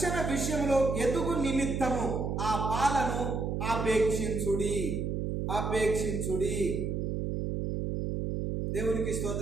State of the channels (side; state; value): right; noise; hum, 1 dB below the sound